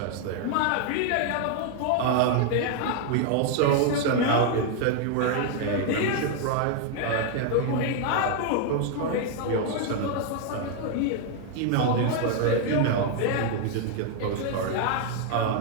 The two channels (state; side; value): different; both; correlation 0.00